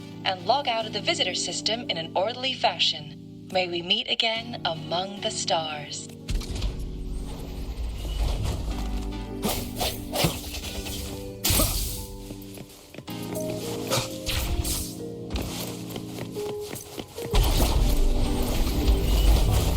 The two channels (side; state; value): both; identical; correlation 1.00